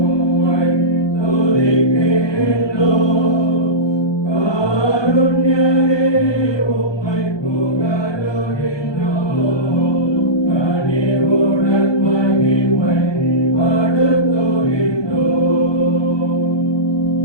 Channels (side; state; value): right; late; 1.2 ms